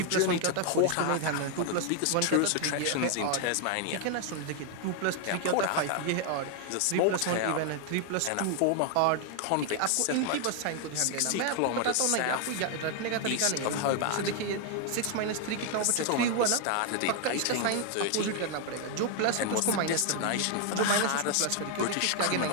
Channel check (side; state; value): both; different; correlation 0.01